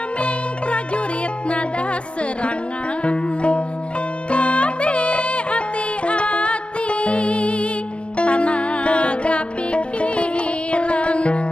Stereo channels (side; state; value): right; late; 0.058 ms